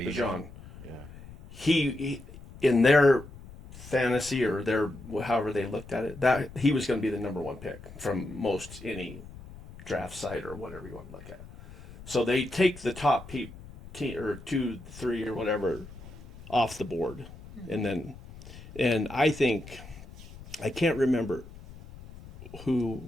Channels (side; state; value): left; noise; rumble, 17 dB below the sound